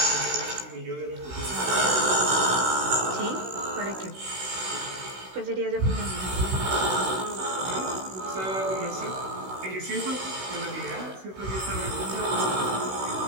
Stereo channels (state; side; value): late; left; 16 ms